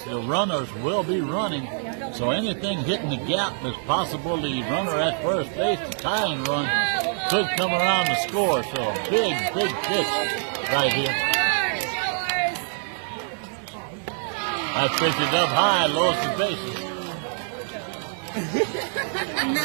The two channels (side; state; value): left; silent; digital silence